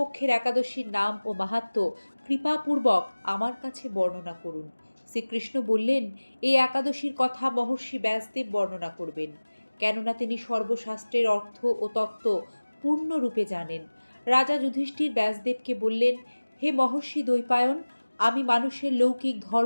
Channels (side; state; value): both; inverted; correlation -1.00